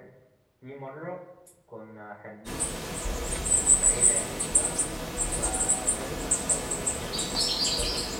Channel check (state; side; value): identical; both; correlation 1.00